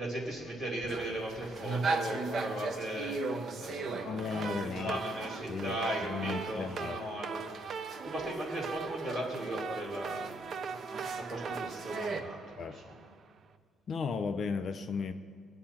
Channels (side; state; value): both; normal; correlation 0.72